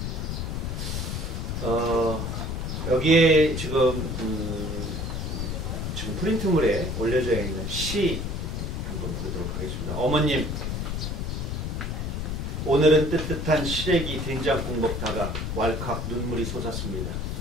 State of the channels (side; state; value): left; noise; rumble, 3 dB below the sound